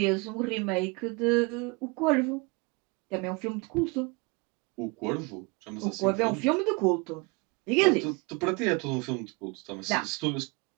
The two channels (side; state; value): left; quieter; 28.3 dB